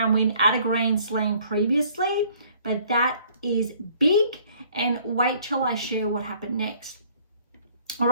win at a Grand Slam previously, but that is big. And wait till I share what happened next. All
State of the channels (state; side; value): inverted; both; correlation -0.58